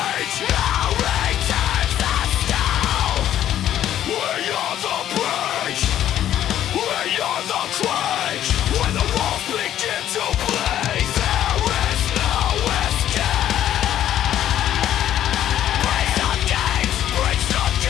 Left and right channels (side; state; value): right; quieter; 11.5 dB